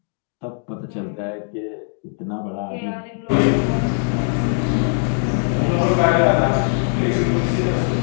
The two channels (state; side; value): silent; right; 65 dB below the other